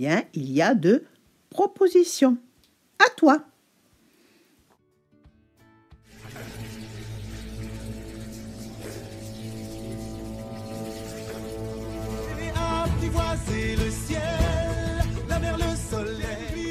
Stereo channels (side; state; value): both; identical; correlation 1.00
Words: il y a de propositions. À toi. Apprivoiser le ciel, la mer, le